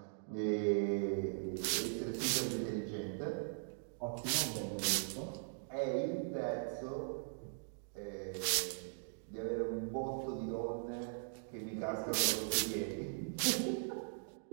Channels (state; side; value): silent; left; digital silence